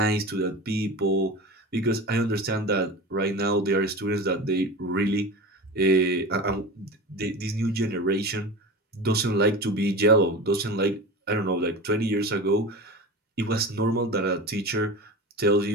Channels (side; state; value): both; normal; correlation 0.30